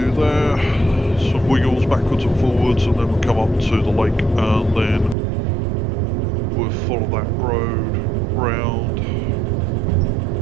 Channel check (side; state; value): left; drops out; at 5.2 s